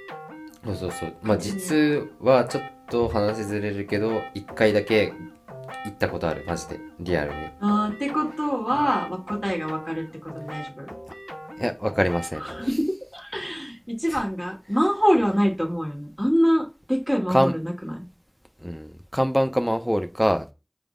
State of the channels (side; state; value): both; identical; correlation 1.00